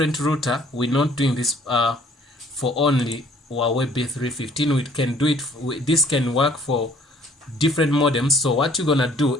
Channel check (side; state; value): both; normal; correlation 0.59